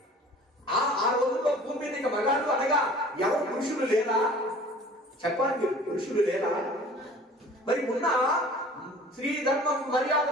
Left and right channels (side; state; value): both; normal; correlation 0.46